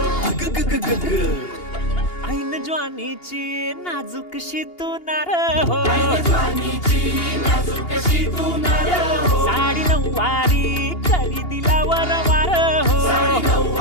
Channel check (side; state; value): right; late; 2.8 ms